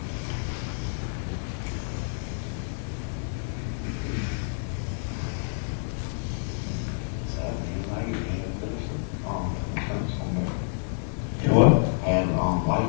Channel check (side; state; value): right; silent; digital silence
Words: You what? And,